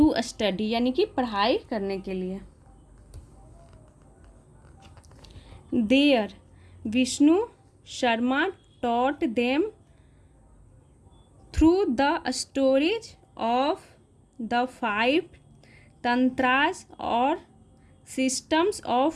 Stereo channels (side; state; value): both; identical; correlation 1.00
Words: स्टडी यानी कि पढ़ाई करने के लिए। There Vishnu Sharma taught them through the stories of the 5 tantras और सिस्टम्स